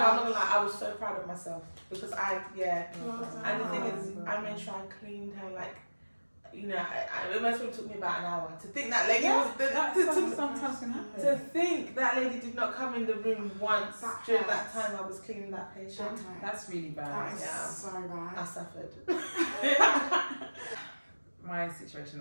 gonna lie, I was so proud of myself because and the thing is, I made sure I cleaned her, like, you know, it must have took me about an hour to think that lady was sometimes can happen. to think that lady did not come in the room once during that time I was cleaning that patient. That's really bad. That is so bad. I suffered. My situation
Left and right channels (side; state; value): both; inverted; correlation -1.00